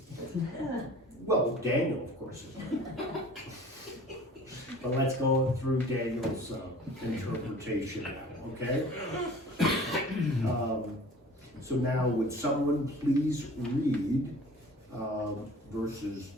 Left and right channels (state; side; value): normal; both; correlation 0.46